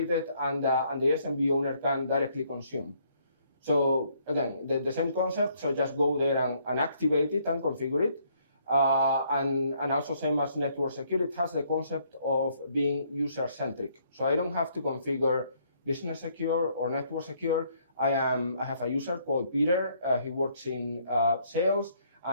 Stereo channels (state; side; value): inverted; both; correlation -0.67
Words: and the SMB owner can directly consume. So again, the same concept, so just go there and activate it and configure it. And also same as Network Secure, it has the concept of being user-centric. So I don't have to configure Business Secure or Network Secure. I have a user called Peter. He works in sales,